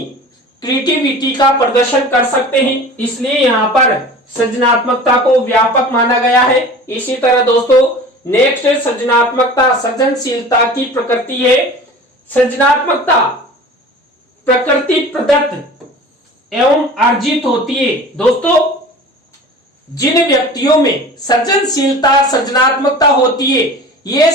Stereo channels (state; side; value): normal; both; correlation 0.39